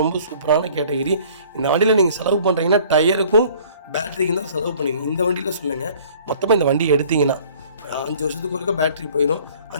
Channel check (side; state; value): both; inverted; correlation -0.53